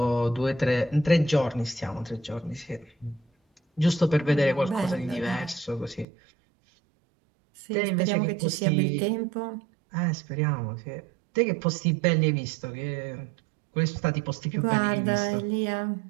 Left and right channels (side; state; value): left; drops out; at 6.1 s